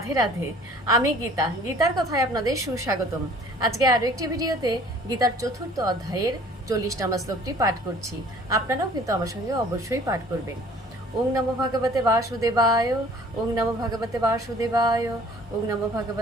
রাধে। আমি গীতা, গীতার কথায় আপনাদের সুস্বাগতম। আজকে আরও একটি ভিডিওতে গীতার চতুর্থ অধ্যায়ের 40 নম্বর শ্লোকটি পাঠ করছি। আপনারাও কিন্তু আমার সঙ্গে অবশ্যই পাঠ করবেন। ওং নমো ভগবতে বাসুদেবায়, ওং নমো ভগবতে বাসুদেবায়, ওং নমো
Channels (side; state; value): both; normal; correlation 0.51